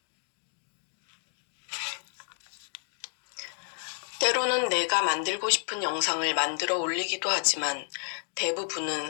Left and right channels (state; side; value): silent; right; 57 dB below the other